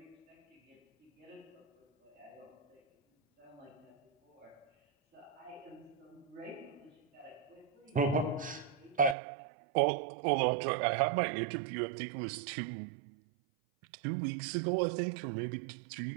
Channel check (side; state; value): left; drops out; at 9.2 s